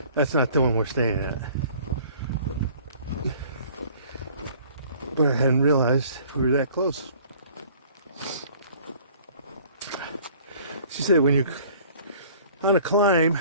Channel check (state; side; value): inverted; both; correlation -0.52